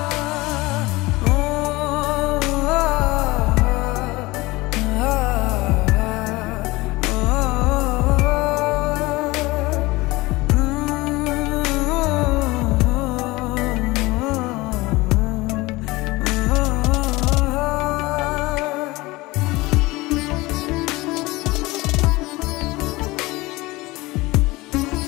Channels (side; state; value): right; quieter; 21.2 dB